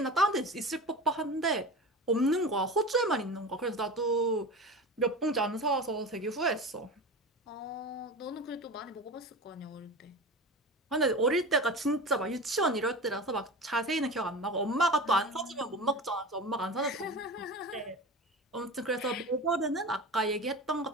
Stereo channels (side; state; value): both; normal; correlation 0.31